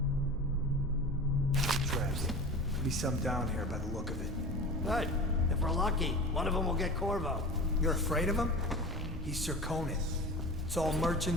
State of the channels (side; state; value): both; normal; correlation 0.33